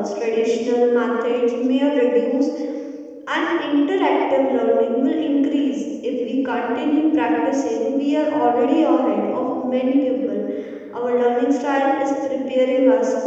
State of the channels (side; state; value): both; identical; correlation 1.00